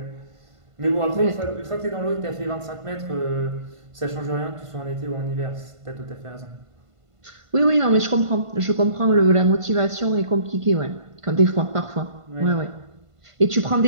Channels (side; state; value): left; late; 1.5 ms